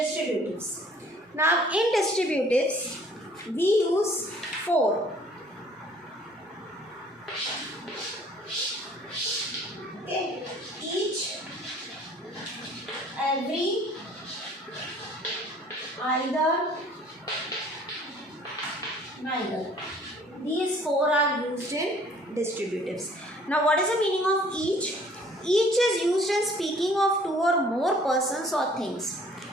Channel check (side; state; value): both; normal; correlation 0.55